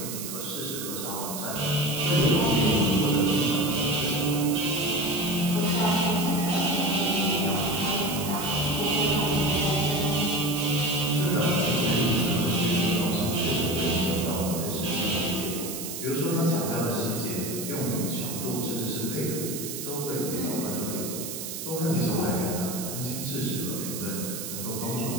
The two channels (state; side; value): noise; right; hiss, 7 dB below the sound